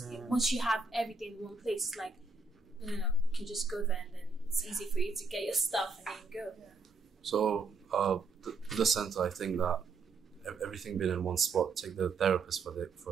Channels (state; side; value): quieter; left; 4.1 dB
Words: Once you have everything in one place, it's like, you can just go there, and then it's easy for you to get your stuff and then go. So, the center, I think that everything being in one spot, take the therapist